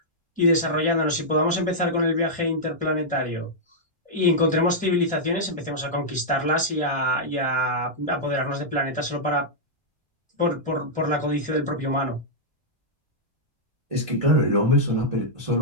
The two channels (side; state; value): left; late; 1.4 ms